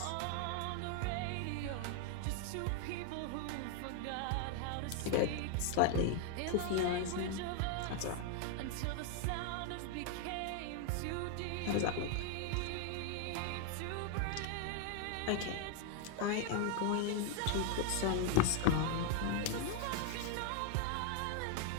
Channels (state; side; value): different; both; correlation 0.00